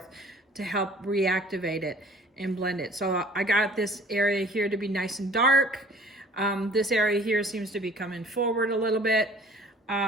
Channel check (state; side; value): normal; both; correlation 0.51